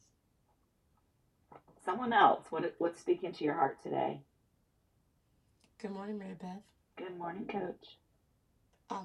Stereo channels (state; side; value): identical; both; correlation 1.00